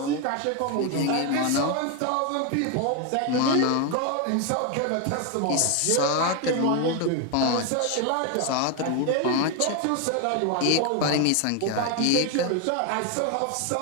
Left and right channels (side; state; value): both; different; correlation 0.01